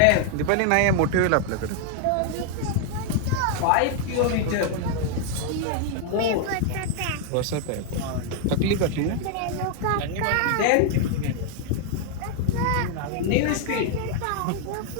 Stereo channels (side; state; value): both; different; correlation 0.00